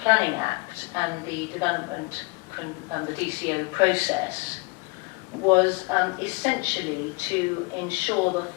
Planning Act and the development and the DCO process was essentially to ensure the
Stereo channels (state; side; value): quieter; right; 27.0 dB